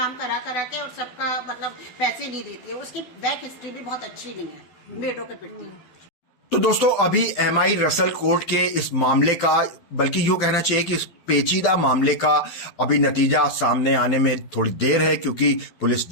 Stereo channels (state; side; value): late; right; 12 ms